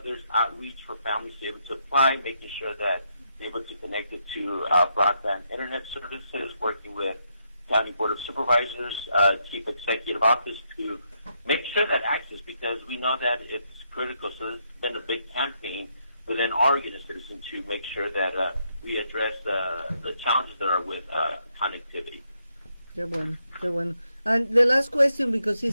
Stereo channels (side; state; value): both; inverted; correlation -0.78